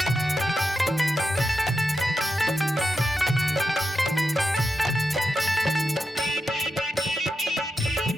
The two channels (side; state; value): both; normal; correlation 0.88